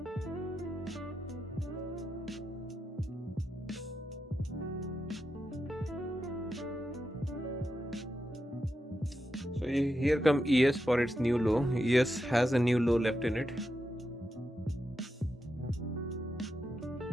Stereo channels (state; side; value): normal; both; correlation 0.87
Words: So here come ES for its new low. ES has a new low left in it.